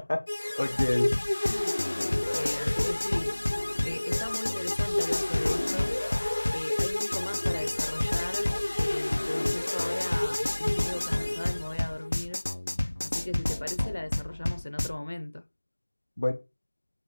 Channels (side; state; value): both; inverted; correlation -1.00